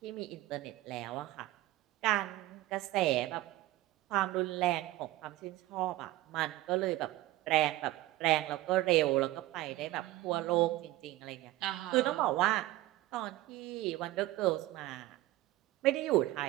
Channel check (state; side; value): quieter; left; 16.9 dB